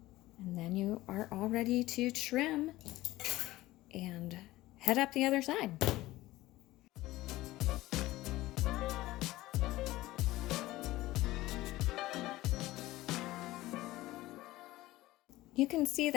And then you are all ready to trim and head up the other side. You can see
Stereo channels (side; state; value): right; quieter; 17.5 dB